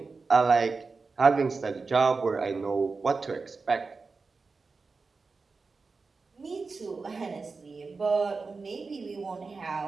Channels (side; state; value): left; quieter; 4.3 dB